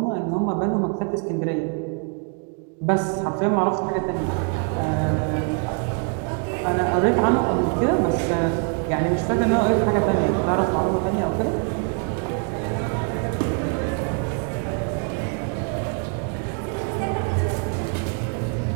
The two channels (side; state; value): left; quieter; 39.8 dB